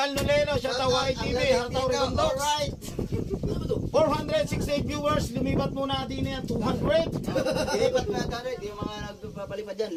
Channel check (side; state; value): both; identical; correlation 1.00